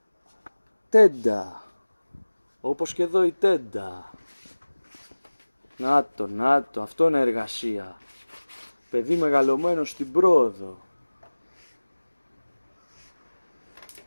τέντα. Όπως και εδώ η τέντα. Να το, αυτό είναι εργασία. Παιδί μεγαλωμένο στην πρόοδο.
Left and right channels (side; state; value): both; inverted; correlation -1.00